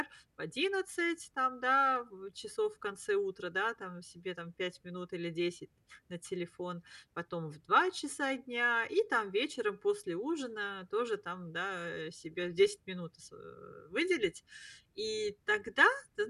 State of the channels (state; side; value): identical; both; correlation 1.00